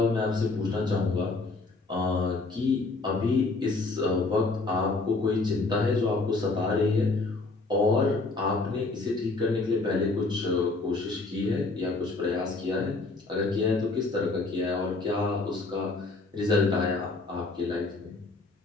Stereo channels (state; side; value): quieter; right; 3.5 dB